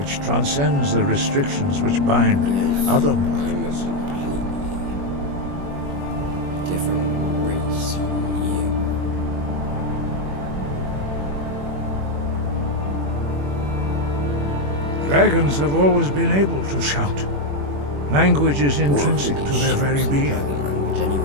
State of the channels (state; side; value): late; left; 21 ms